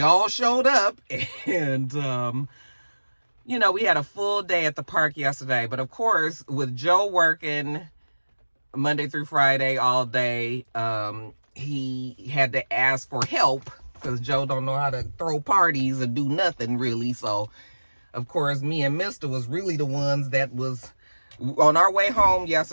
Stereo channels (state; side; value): inverted; both; correlation -1.00